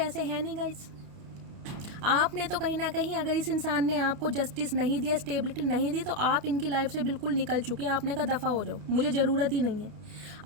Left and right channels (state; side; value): late; left; 29 ms